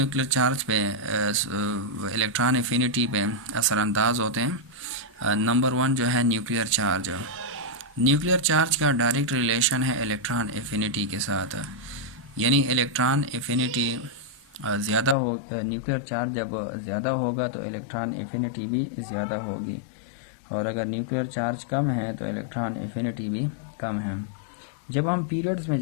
चार्ज पे इलेक्ट्रॉन एफिनिटी पे असरअंदाज होते हैं। नंबर 1 जो है न्यूक्लियर चार्ज। न्यूक्लियर चार्ज का डायरेक्ट रिलेशन है इलेक्ट्रॉन एफिनिटी के साथ, यानी इलेक्ट्रॉन एफिनिटी ज़्यादा हो, न्यूक्लियर चार्ज जब ज़्यादा होगा तो इलेक्ट्रॉन एफिनिटी भी ज़्यादा होगी, और अगर न्यूक्लियर चार्ज कम है तो इलेक्ट्रॉन एफिनिटी भी कम है। जब हम पीरियड्स में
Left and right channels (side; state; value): right; drops out; at 15.2 s